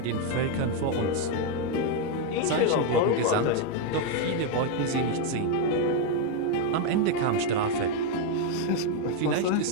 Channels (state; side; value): different; both; correlation 0.01